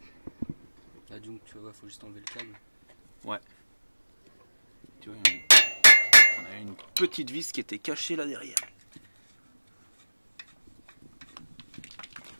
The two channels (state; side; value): inverted; both; correlation -1.00